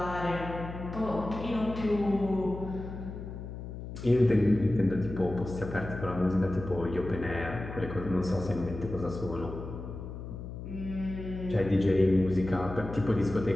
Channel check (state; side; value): noise; left; hum, 9 dB below the sound